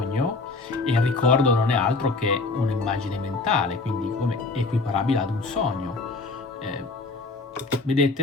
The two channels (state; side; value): quieter; right; 3.7 dB